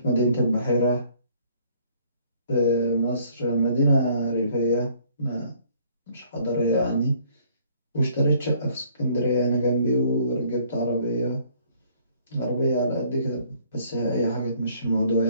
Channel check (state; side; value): inverted; both; correlation -0.61